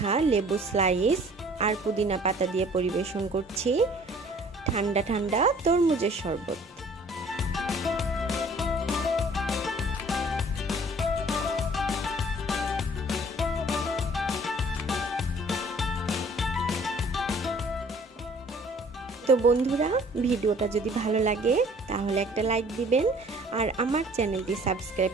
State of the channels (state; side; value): normal; both; correlation 0.54